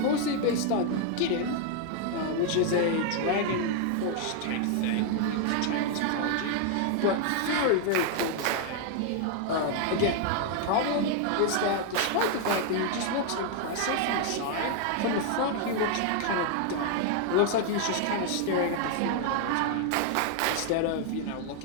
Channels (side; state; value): both; different; correlation 0.00